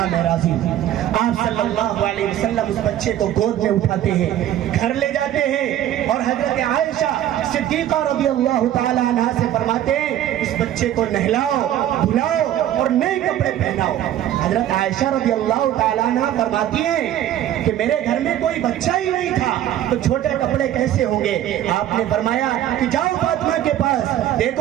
میں راضی ہوں۔ آپ صلی اللہ علیہ وسلم اس بچے کو گود میں اٹھاتے ہیں، گھر لے جاتے ہیں اور حضرت عائشہ صدیقہ رضی اللہ تعالیٰ عنہ سے فرماتے ہیں اس بچے کو نہلاؤ دھلاؤ اور نئے کپڑے پہناؤ۔ حضرت عائشہ رضی اللہ تعالیٰ عنہ فرماتی ہیں کہ میرے گھر میں کوئی بچہ ہی نہیں تھا تو چھوٹے کپڑے کیسے ہوں گے؟ آپ نے فرمایا کہ جاؤ فاطمہ کے پاس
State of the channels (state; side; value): quieter; left; 12.0 dB